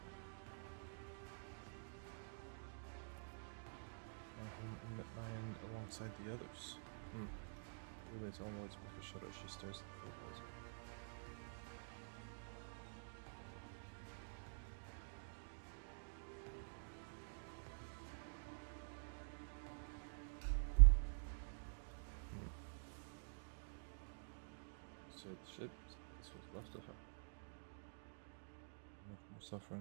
My home and met my end alongside the others. Really, its own words make her shudder as she stares at the photos. Said the ship, this was left of her. Much more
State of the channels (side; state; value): left; silent; digital silence